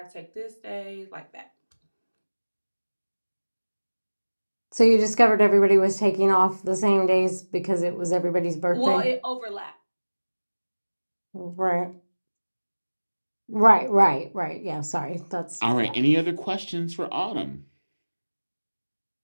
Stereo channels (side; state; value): both; inverted; correlation -1.00